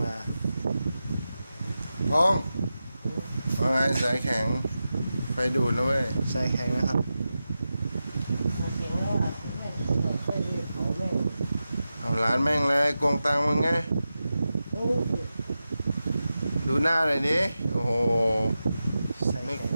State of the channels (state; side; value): inverted; both; correlation -0.92